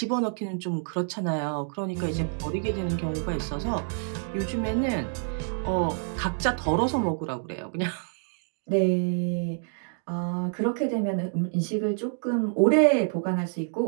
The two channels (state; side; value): silent; left; digital silence